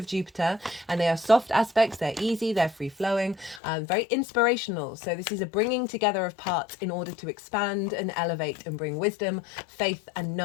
Jupiter, and they are soft aspects. They're easy, they're free-flowing, very inspirational. So this is a bringing together of parts in order to expand and elevate and bring wisdom, faith and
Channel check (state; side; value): drops out; right; at 3.6 s